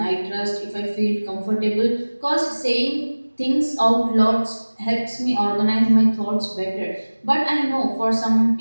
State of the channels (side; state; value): both; inverted; correlation -1.00